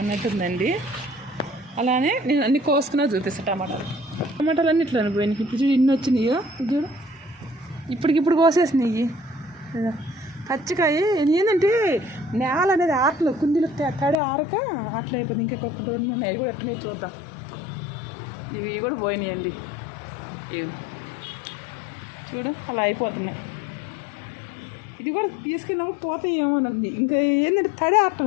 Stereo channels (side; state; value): right; drops out; at 14.2 s